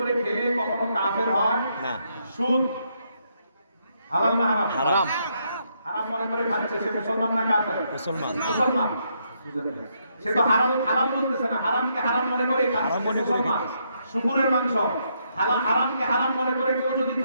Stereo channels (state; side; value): inverted; both; correlation -0.76